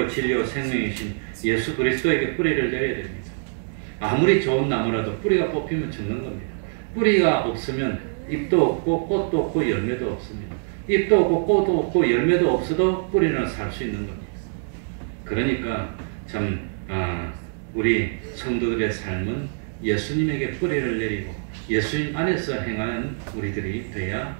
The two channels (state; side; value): silent; left; digital silence